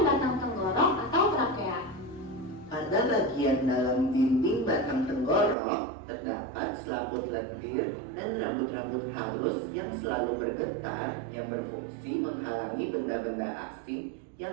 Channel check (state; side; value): drops out; left; at 5.6 s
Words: batang tenggorok atau trakea. Pada bagian dalam dinding batang tenggorok terdapat selaput lendir dan rambut-rambut halus yang selalu bergetar yang berfungsi menghalangi benda-benda asing